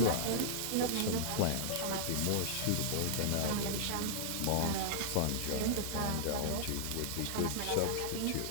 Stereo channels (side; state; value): both; different; correlation -0.01